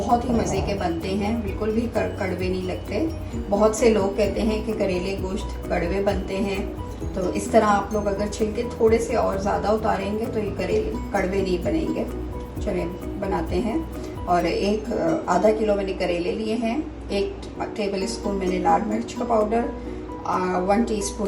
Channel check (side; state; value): both; identical; correlation 1.00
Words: ही मज़े के बनते हैं, बिल्कुल भी कड़वे नहीं लगते। बहुत से लोग कहते हैं कि करेले गोश्त कड़वे बनते हैं, तो इस तरह आप लोग अगर छिलके थोड़े से और ज़्यादा उतारेंगे तो ये करेले कड़वे नहीं बनेंगे। चलिए बनाते हैं। और आधा किलो मैंने करेले लिए हैं। 1 टेबल स्पून मैंने लाल मिर्च का पाउडर, 1 टीस्पून